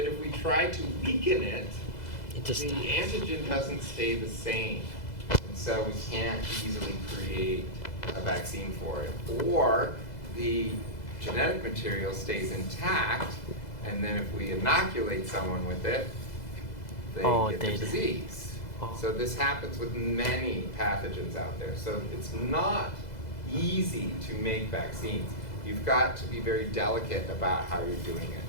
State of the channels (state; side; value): late; right; 2.0 ms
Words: if we try to weaken it, It just the antigen doesn't stay the same. And so we can't easily create a vaccine for it. Or the genetic material stays intact, and then if we inoculate someone with it, they get the disease. Oh. So this happens with many pathogens out there. So it's not easy to make vaccines. You've got to be very delicate about how you're doing it.